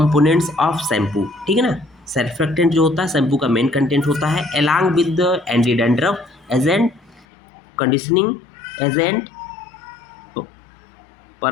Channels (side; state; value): right; drops out; at 7.2 s